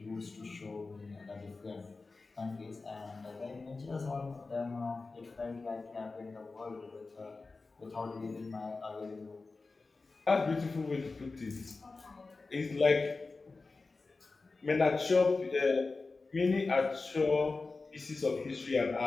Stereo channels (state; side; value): quieter; right; 3.8 dB